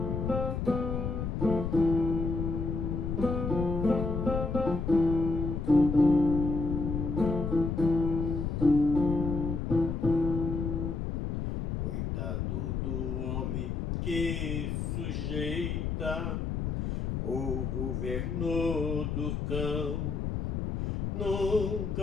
Coitado do homem que sujeita o governo do cão,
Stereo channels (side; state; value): left; noise; rumble, 2 dB below the sound